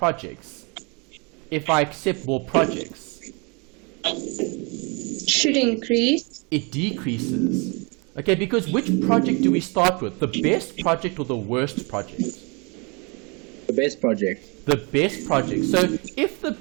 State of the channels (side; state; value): left; quieter; 31.3 dB